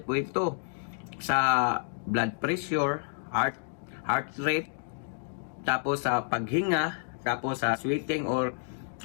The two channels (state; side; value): silent; right; digital silence